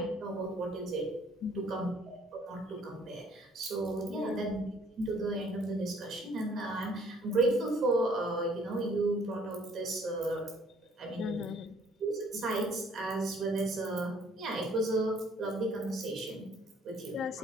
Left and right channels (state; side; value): normal; both; correlation 0.60